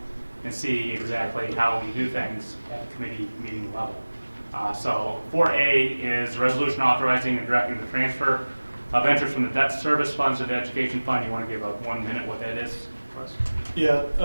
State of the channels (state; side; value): inverted; both; correlation -1.00